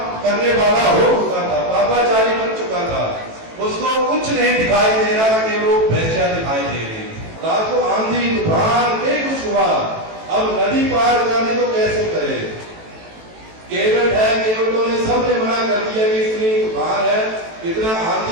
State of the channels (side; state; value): left; late; 18 ms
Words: करने वाला हो चुका था, पापाचारी बन चुका था, उसको कुछ नहीं दिखाई दे रहा कि वो वेश्या दिखाई दे रही। रात को आंधी तूफान में कुछ हुआ, अब नदी पार करने को कैसे करे। केवट है, केवटों ने सबने मना कर दिया कि इतनी तूफान है, इतना